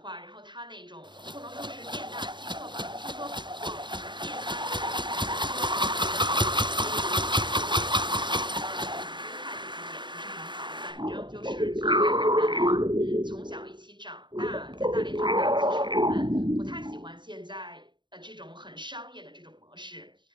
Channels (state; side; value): late; left; 0.22 ms